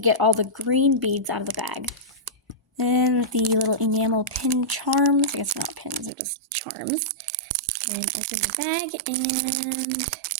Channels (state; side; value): drops out; left; at 6.1 s